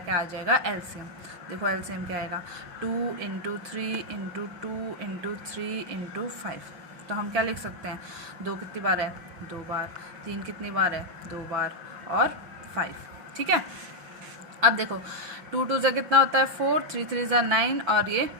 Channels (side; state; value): left; late; 6.3 ms